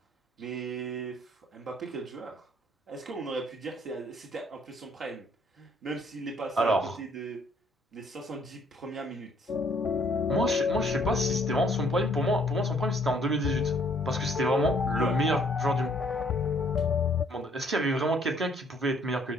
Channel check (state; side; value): normal; both; correlation 0.63